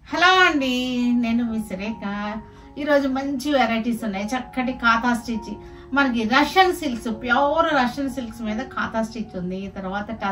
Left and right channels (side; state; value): both; identical; correlation 1.00